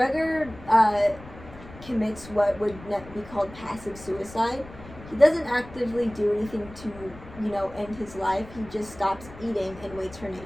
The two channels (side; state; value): left; noise; rumble, 17 dB below the sound